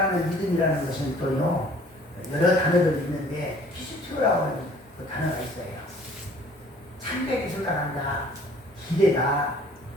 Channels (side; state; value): both; normal; correlation 0.54